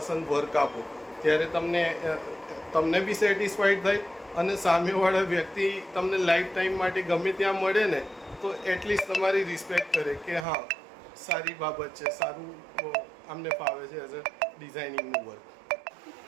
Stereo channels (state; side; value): drops out; left; at 10.5 s